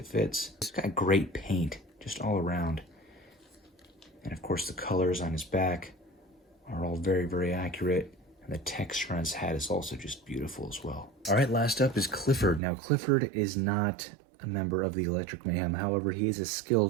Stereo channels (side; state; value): left; drops out; at 12.6 s